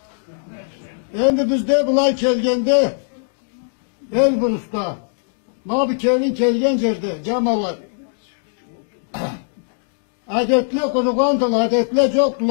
Endi bizde bulay kelgende Elbrus'ta mabi kelgen yerdi camalar. Adetle kurugandılar, adetle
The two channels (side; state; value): right; silent; digital silence